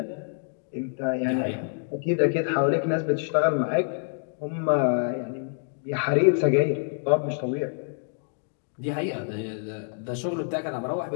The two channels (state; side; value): silent; right; 60 dB below the other